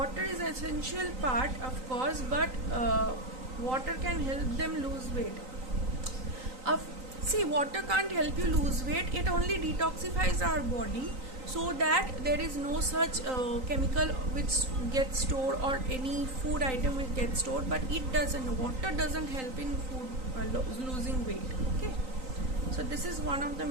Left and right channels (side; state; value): left; late; 3.9 ms